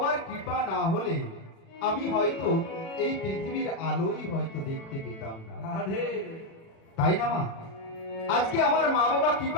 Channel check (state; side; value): late; right; 36 ms